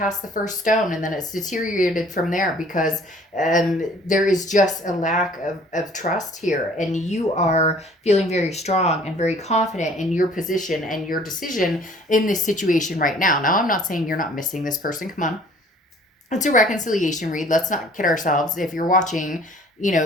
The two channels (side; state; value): both; normal; correlation 0.54